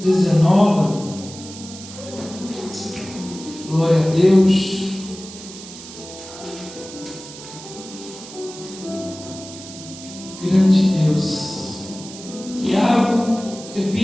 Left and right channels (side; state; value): right; noise; hiss, 15 dB below the sound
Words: 19. Glória a Deus. Grande Deus. Tiago,